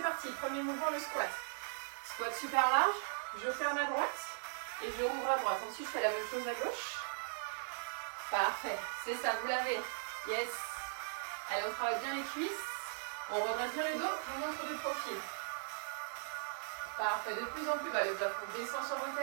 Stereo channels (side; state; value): left; silent; 52 dB below the other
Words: parti. Premier mouvement, le squat. Squat super large. Je ferme à droite et je rouvre à droite. Ensuite, je fais la même chose à gauche. Parfait. C'est ça, vous l'avez. Yes. Allez, on travaille bien les cuisses. On redresse bien le dos. On montre de profil. Parfait. De plus en plus bas. Le plafond descend sur vos